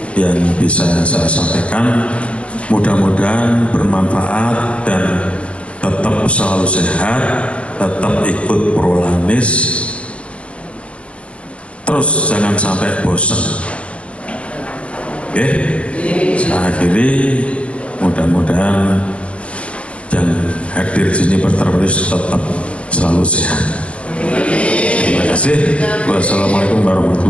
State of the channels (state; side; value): late; right; 0.061 ms